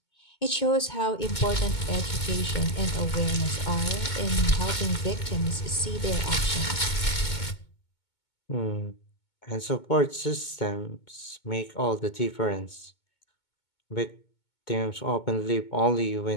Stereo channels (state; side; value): late; right; 2.2 ms